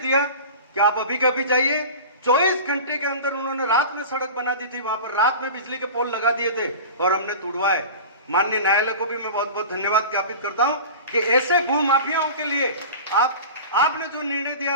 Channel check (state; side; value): inverted; both; correlation -0.34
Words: कि आप अभी के अभी जाइए। 24 घंटे के अंदर उन्होंने रात में सड़क बना दी थी, वहां पर रात में बिजली के पोल लगा दिए थे और हमने तुड़वाए। माननीय न्यायालय को भी मैं बहुत बहुत धन्यवाद ज्ञापित करता हूं कि ऐसे भू माफियाओं के लिए आपने जो निर्णय दिया